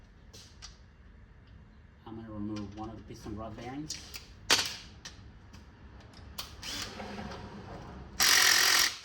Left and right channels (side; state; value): both; identical; correlation 1.00